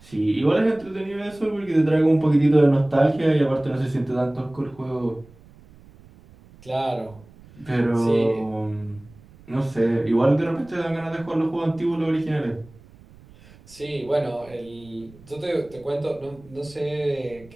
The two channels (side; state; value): right; noise; rumble, 24 dB below the sound